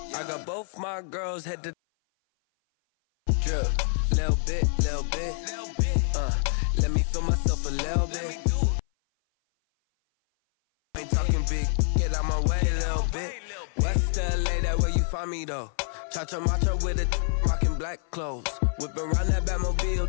got both my girls head to drip, little bit. Let me feel myself a little bit. I ain't talking big, get out my way a little bit. West LA, that where you find me though. Cha-cha macho with a rockin' black clothes. Whip around that Batmobile,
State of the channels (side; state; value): right; silent; 56 dB below the other